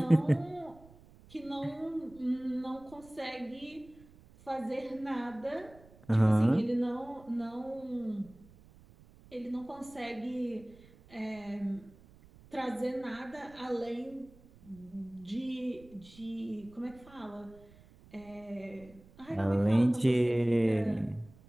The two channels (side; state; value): right; noise; rumble, 24 dB below the sound